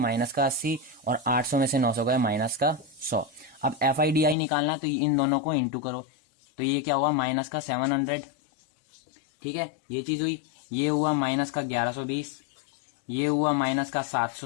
का 80 और 800 में से 900 गए माइनस का 100। अब एफ आई डी आई निकालना है तो इन दोनों को इंटू करो, तो ये क्या हुआ माइनस का 700। ठीक है, ये चीज हुई। ये हुआ माइनस का 1120, ये हुआ माइनस का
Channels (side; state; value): right; drops out; at 4.4 s